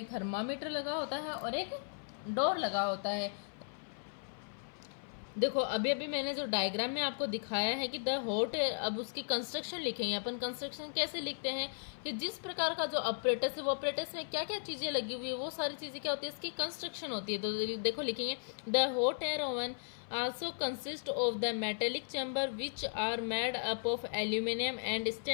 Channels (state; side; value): silent; right; 54 dB below the other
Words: थर्मामीटर लगा होता है और एक डोर लगा होता है। देखो अभी मैंने जो डायग्राम में आपको दिखाया है कि द हॉट एयर, अब उसकी कंस्ट्रक्शन लिखेंगे अपन। कंस्ट्रक्शन कैसे लिखते हैं कि जिस प्रकार का जो ऑपरेटस है वो ऑपरेटस में क्या क्या चीज़ें लगी हुई है वो सारी चीज़ें क्या होती है, इसकी कंस्ट्रक्शन होती है। तो देखो लिखेंगे the hot air oven also consist of the metallic chamber which are made up of aluminium and